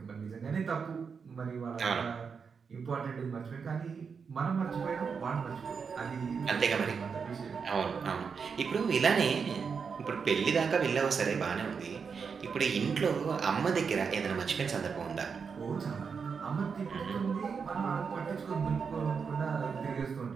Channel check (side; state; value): left; quieter; 5.9 dB